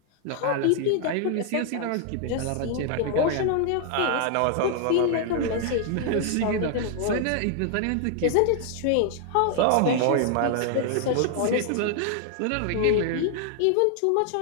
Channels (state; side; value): different; both; correlation 0.00